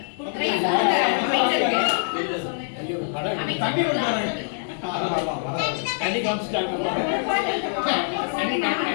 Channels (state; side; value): silent; right; 62 dB below the other